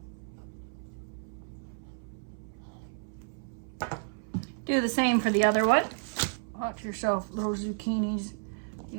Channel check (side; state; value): left; silent; 56 dB below the other